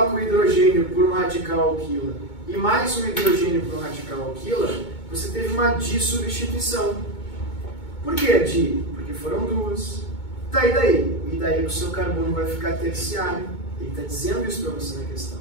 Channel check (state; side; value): late; right; 2.2 ms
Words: o hidrogênio por um radical alquila e mais um hidrogênio por um radical alquila, você teve uma dissubstituição. Por que di? Porque foram 2. Tá, e daí? E daí o seu carbono vai ficar terciário. Ele está dizendo isso para você na questão.